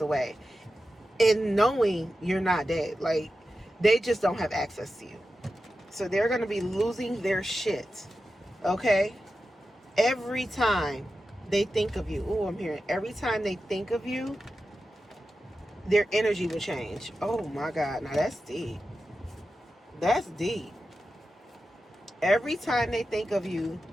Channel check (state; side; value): normal; both; correlation 0.92